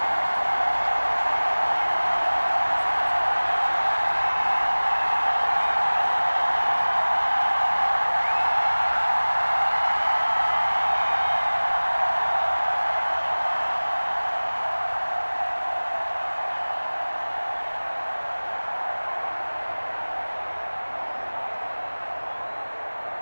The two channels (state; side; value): inverted; both; correlation -1.00